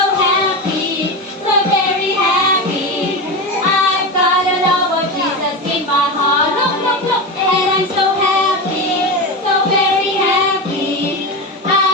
happy, so very happy. I've got a love of Jesus in my heart. Look, look, look. And I'm so happy, so very happy.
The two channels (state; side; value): normal; both; correlation 0.19